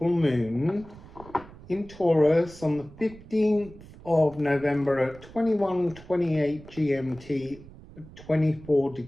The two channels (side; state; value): right; noise; rumble, 19 dB below the sound